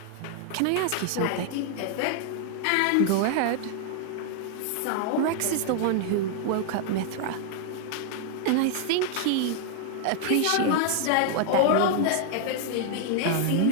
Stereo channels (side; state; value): both; different; correlation 0.00